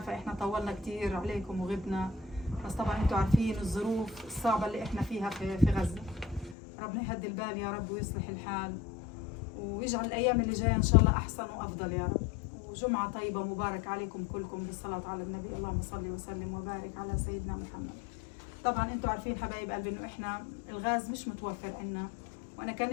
إحنا طولنا كتير عليكم وغبنا، بس طبعا أنتوا عارفين الظروف الصعبة اللي إحنا فيها في غزة. ربنا يهدي البال يا رب ويصلح الحال، ويجعل الأيام اللي جاية إن شاء الله أحسن وأفضل يا رب. وجمعة طيبة مبارك عليكم كلكم بالصلاة على النبي. اللهم صل وسلم وبارك على سيدنا محمد. طبعا أنتوا عارفين حبايب قلبي إنه إحنا الغاز مش متوفر عنا، وانا كان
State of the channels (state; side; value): drops out; right; at 6.6 s